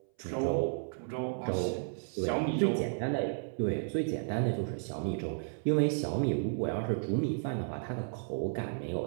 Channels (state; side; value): silent; left; 56 dB below the other